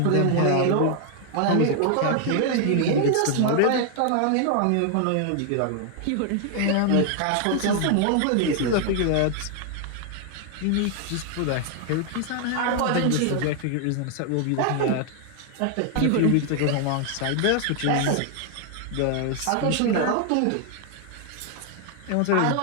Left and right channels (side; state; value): both; different; correlation 0.00